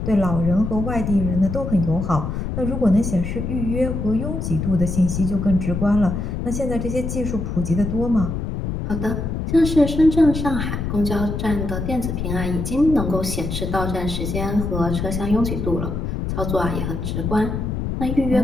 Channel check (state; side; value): noise; left; rumble, 3 dB below the sound